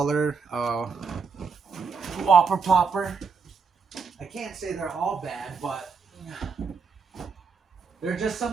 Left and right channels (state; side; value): quieter; left; 5.4 dB